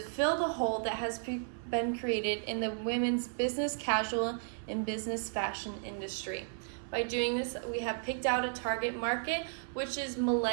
fill the hole that has been created in the women's business casual and business fashion industry. By doing this, we have picked out a target market, which is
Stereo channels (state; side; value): silent; left; 55 dB below the other